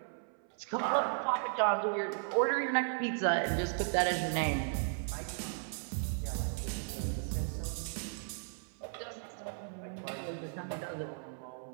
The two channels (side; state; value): left; silent; 54 dB below the other